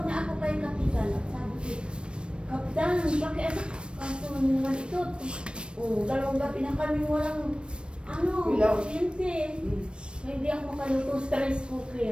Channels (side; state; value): left; late; 0.056 ms